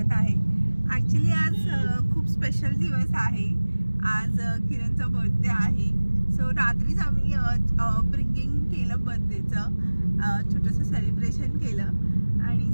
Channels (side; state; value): both; inverted; correlation -1.00